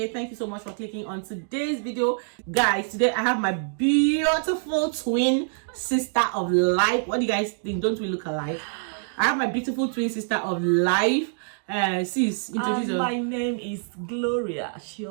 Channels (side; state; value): left; silent; digital silence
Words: Thank you so much for clicking on today's video. Guys, today I have my beautiful twin sister of life. What do you guys think? Don't we look alike? I have my beautiful twin sister of life. Sis, introduce yourself. My name is Gloria